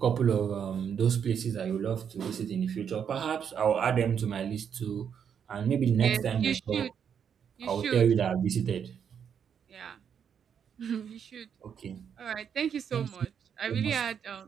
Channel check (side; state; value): left; quieter; 7.8 dB